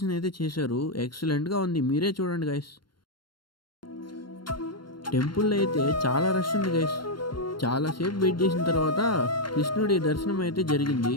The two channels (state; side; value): late; right; 0.72 ms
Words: అయితే చేశారు, ఎక్సలెంట్గా ఉంది. మీరే చూడండి గాయస్. టెంపుల్లో అయితే చాలా రష్ ఉంది గాయస్. చాలాసేపు వెయిట్ చేసిన తర్వాత కృష్ణుడి దర్శనం అయితే జరిగింది.